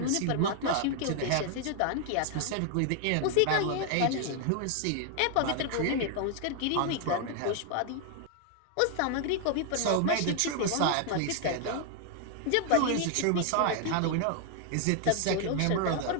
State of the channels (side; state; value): both; different; correlation 0.00